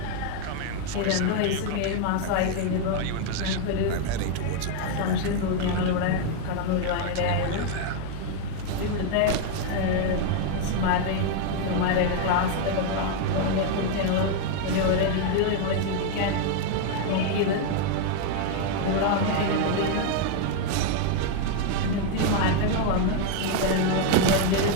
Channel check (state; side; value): different; both; correlation 0.01